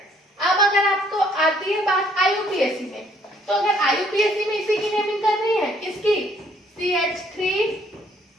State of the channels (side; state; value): both; normal; correlation 0.64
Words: अब अगर आपको आती है बात IUPAC में, तो अगर IUPAC में इसी की नेमिंग करनी है, किसकी?